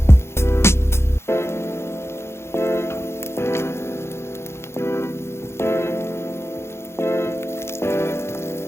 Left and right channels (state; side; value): late; right; 0.12 ms